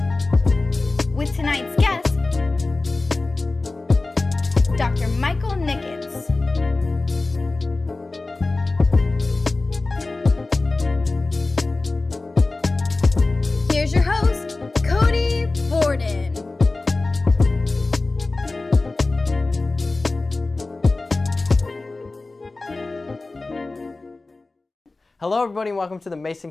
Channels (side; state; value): right; quieter; 3.3 dB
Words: With tonight's guest, Dr. Michael Nickens. Here's your host, Cody Borden. Hello everybody and welcome to the Mason